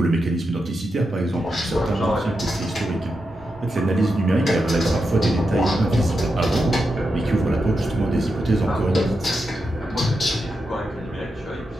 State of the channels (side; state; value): both; normal; correlation 0.87